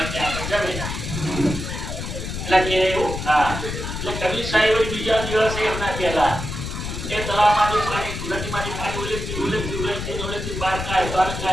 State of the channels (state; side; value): noise; left; rumble, 6 dB below the sound